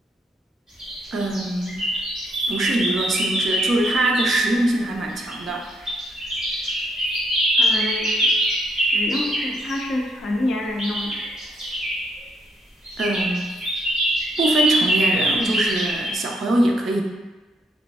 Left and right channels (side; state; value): both; normal; correlation 0.73